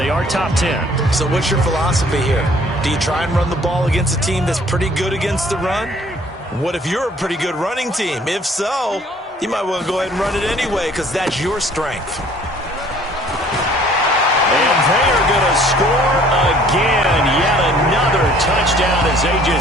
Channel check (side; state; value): both; normal; correlation 0.56